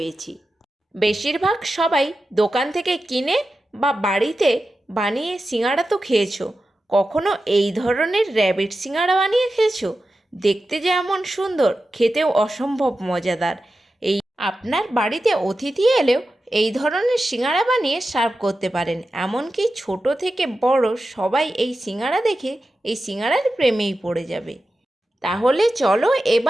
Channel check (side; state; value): both; normal; correlation 0.92